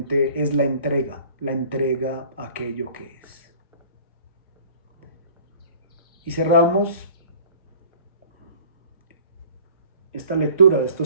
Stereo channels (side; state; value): both; inverted; correlation -0.49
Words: es la entrega a aquello que es. Y cerramos esta lectura de